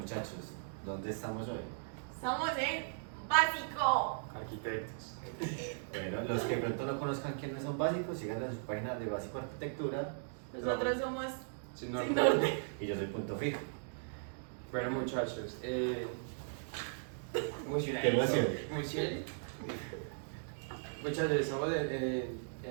¿dónde estamos hoy? Estamos en básico. Arquitectos. Bueno, los que de pronto no conozcan quiénes son básicos, sigan en su página de Básico Arquitectura. Nosotros somos Sin Sin norte. Norte. Y yo soy Punto Fijo. Bueno, muchachos. Emocionadito. Qué emoción. Emocionadito. Muchachos, estamos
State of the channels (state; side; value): silent; left; digital silence